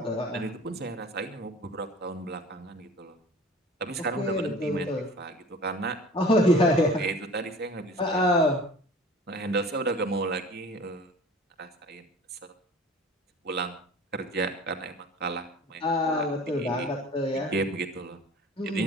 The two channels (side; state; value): both; normal; correlation 0.43